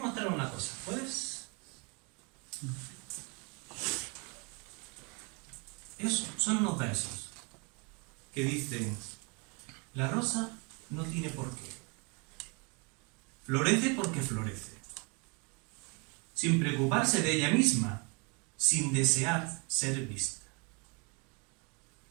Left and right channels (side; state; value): left; quieter; 32.0 dB